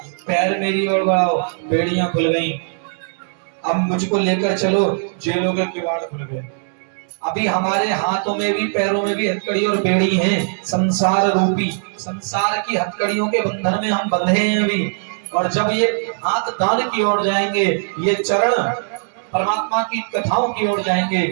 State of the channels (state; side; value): silent; left; digital silence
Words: पैर मेरी ओर बढ़ाओ, बेड़ियां खुल गई। अब मुझको लेकर चलो, जेलों के किवाड़ खुल गए। अभी हमारे हाथों में भी पैरों में भी हथकड़ी और बेड़ी हैं, संसार रूपी, संसार की हथकड़ियों के बंधन में हम बंधे हैं अभी। और जब ये हाथ दान की ओर जाएंगे, ये चरण परमात्मा की कथाओं की ओर जाएंगे,